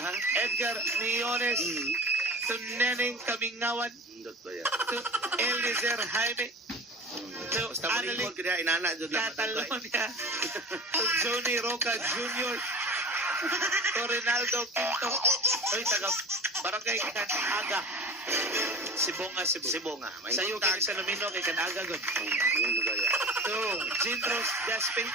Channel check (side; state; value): both; normal; correlation 0.37